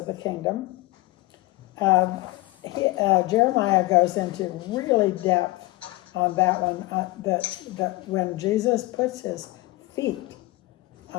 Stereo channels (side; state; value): right; quieter; 20.3 dB